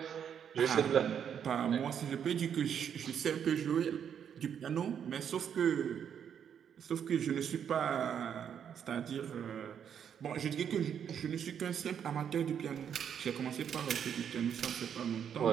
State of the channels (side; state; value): left; quieter; 8.3 dB